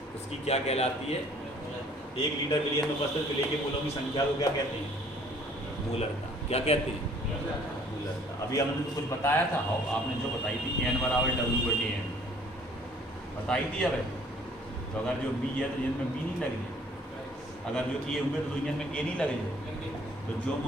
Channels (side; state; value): both; normal; correlation 0.57